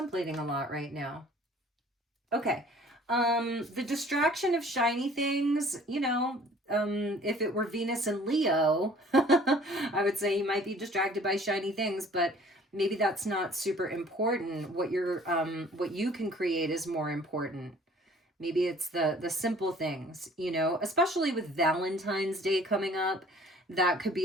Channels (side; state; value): both; normal; correlation 0.52